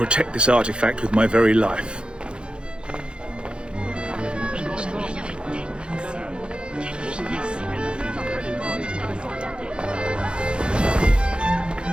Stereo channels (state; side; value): late; left; 0.054 ms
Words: this artifact with my very life.